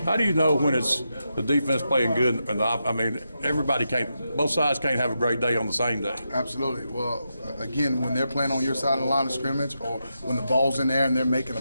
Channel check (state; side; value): inverted; both; correlation -0.86